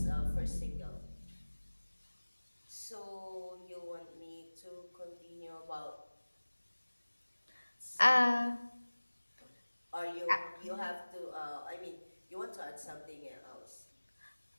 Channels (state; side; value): inverted; both; correlation -1.00